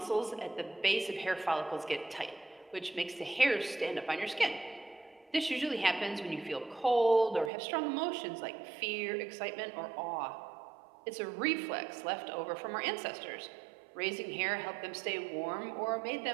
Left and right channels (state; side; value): drops out; left; at 7.5 s